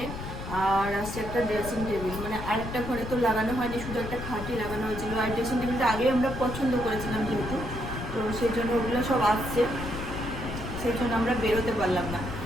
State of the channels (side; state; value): left; noise; rumble, 8 dB below the sound